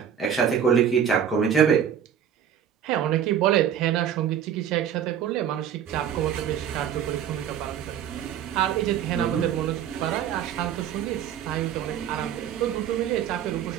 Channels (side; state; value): left; quieter; 9.0 dB